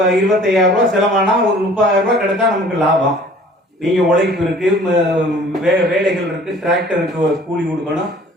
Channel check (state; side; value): normal; both; correlation 0.51